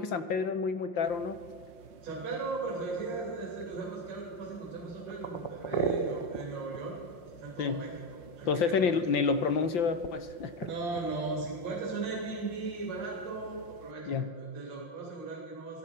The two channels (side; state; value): right; late; 5.8 ms